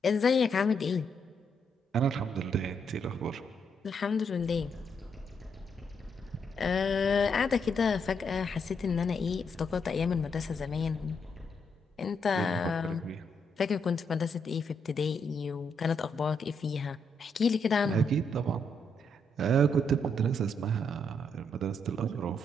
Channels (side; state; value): both; normal; correlation 0.77